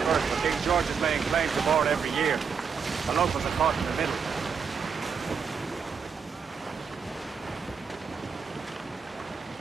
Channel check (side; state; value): left; quieter; 6.1 dB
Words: but King George is laying claim to more every year. The locals are caught in the middle.